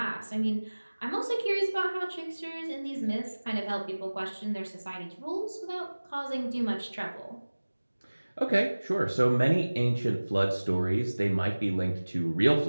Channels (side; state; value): both; inverted; correlation -1.00